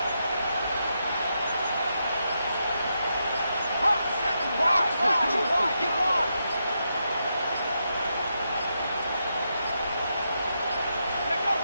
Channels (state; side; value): inverted; both; correlation -0.83